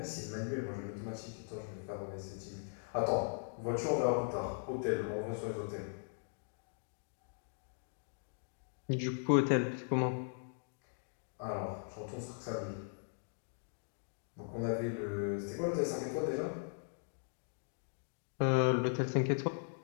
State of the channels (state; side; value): silent; right; digital silence